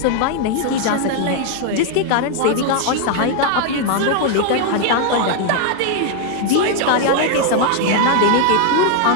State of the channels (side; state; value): both; different; correlation 0.00